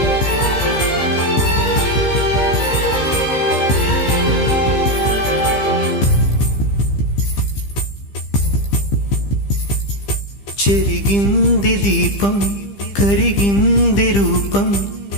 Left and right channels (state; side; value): late; right; 15 ms